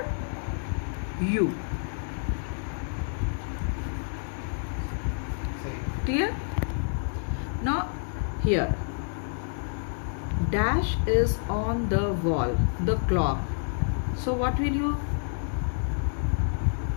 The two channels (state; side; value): silent; right; digital silence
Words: you. Clear? Now here dash is on the wall, the clock. So what will you